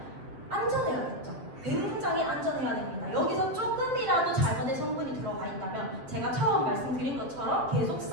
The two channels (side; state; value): left; late; 7.6 ms